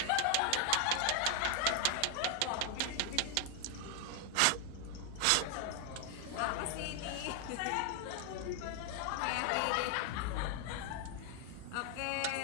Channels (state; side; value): different; both; correlation 0.00